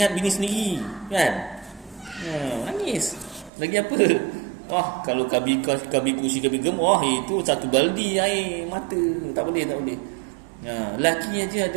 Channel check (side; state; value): left; drops out; at 3.5 s